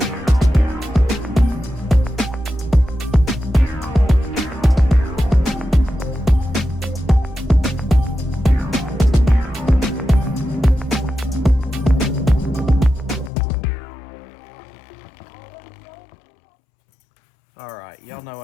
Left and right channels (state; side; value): drops out; right; at 13.3 s